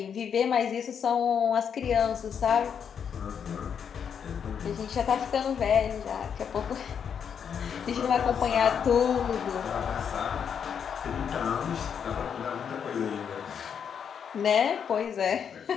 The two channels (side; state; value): right; quieter; 7.5 dB